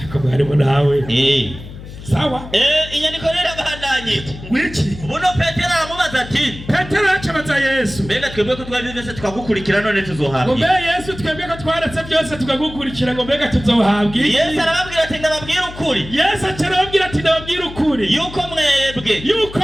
Ako harimo nawe. Sawa? Inyandiko rero abandanye. Wiki. Buno Petero aramubaza ati. Petero acabaza Yesu. Mbega twebwe ko twabivese tukagukurikira none tuzohabwa. Ngo mbega Yesu twebwe ko twaretse byose tukagukurikira ngo mbega tuzohabwa. Yesu arababwira ati ndababwira ukuri. Yesu arababwira ati ndababwira ukuri. Yuko mwebwe.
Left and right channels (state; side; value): noise; left; hum, 14 dB below the sound